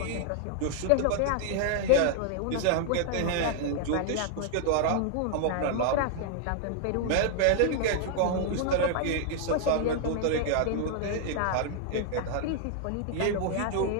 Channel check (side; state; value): both; different; correlation 0.00